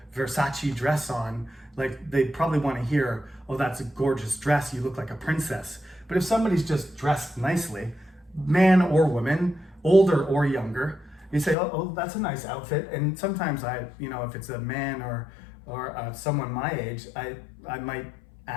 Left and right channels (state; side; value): drops out; right; at 11.6 s